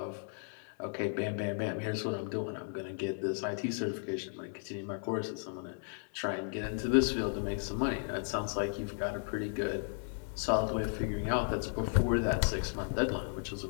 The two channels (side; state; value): right; silent; 55 dB below the other